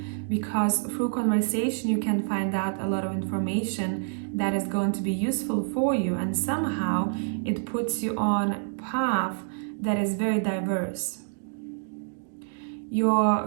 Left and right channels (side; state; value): left; silent; digital silence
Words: because through conversation you can find out a lot of information that is going to be useful for you, and somehow it puts you on a path that is very diverse.